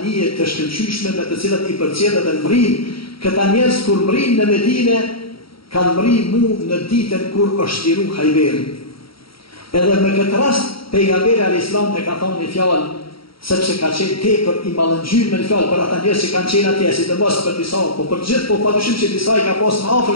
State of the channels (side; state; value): right; late; 0.75 ms